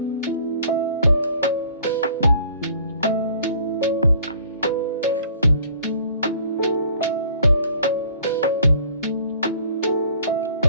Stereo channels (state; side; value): inverted; both; correlation -0.54